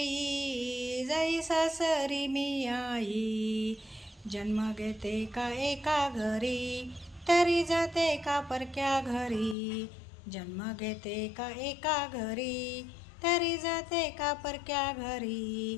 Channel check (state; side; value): drops out; right; at 9.6 s